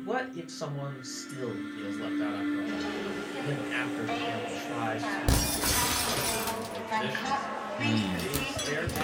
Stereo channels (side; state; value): both; identical; correlation 1.00